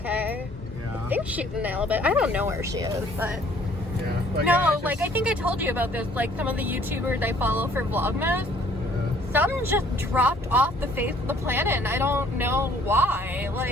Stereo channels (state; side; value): normal; both; correlation 0.59